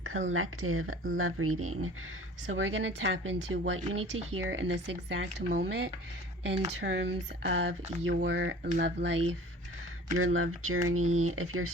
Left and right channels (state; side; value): normal; both; correlation 0.45